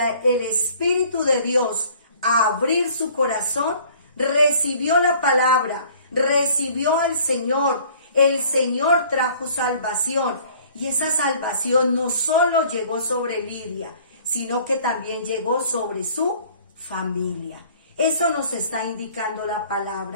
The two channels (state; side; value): inverted; both; correlation -0.53